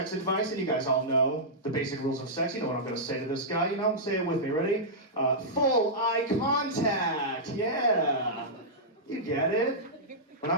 advice, and you guys all know the basic rules of sex. You know what I'm gonna say to this guy, you know? Say it with me, ready? Full eye contact, yeah. You get it? When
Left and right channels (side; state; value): both; normal; correlation -0.12